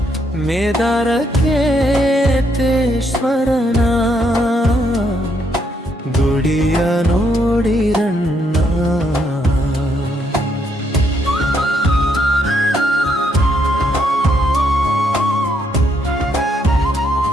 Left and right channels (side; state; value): both; normal; correlation 0.74